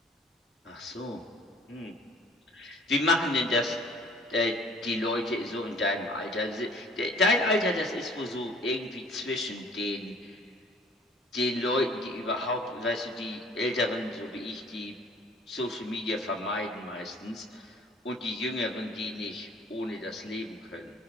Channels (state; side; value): normal; both; correlation 0.53